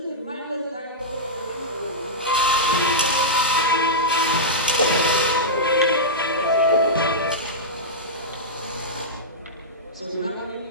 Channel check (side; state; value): both; normal; correlation -0.11